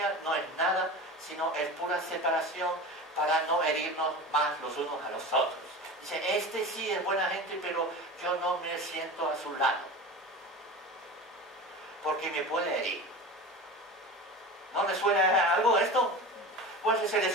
no es nada, sino es pura separación para no herirnos más los unos a los otros. Dice, este sí es buena gente, pero yo no me siento a su lado, porque me puede herir. ¿No le suena algo esto? Pues es el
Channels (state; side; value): normal; both; correlation 0.31